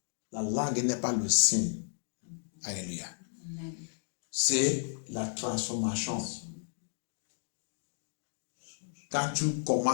La langue n'est pas le signe. Alléluia. C'est la transformation. Quand tu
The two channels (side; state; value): right; silent; digital silence